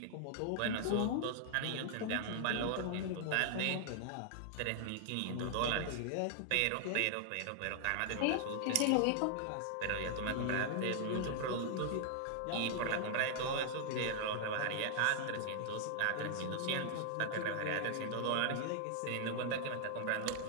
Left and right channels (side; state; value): both; different; correlation 0.00